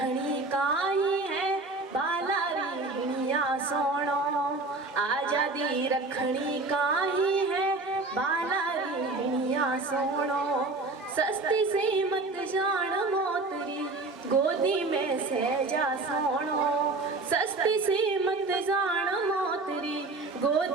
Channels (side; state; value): left; quieter; 3.4 dB